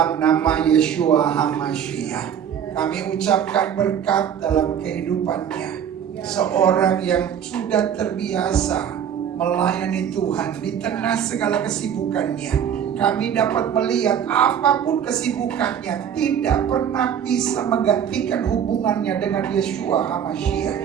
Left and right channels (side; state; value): left; quieter; 8.7 dB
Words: nama Yeshua HaMashiach, kami ucapkan berkat dalam kehidupannya. Seorang yang sudah terbiasa melayani Tuhan di tengah segala kesibukannya. Kami dapat melihat apapun kesibukannya tidak pernah bisa menggantikan hubungannya dengan Yeshua